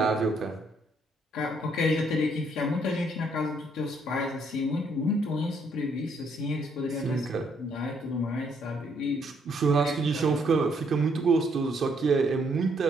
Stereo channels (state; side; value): normal; both; correlation 0.70